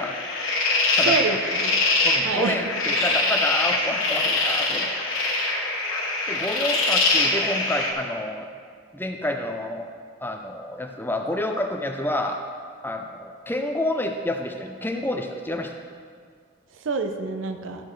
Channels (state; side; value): normal; both; correlation 0.14